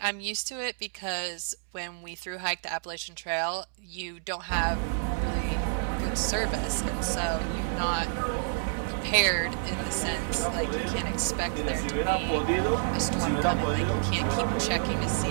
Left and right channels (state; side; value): silent; left; digital silence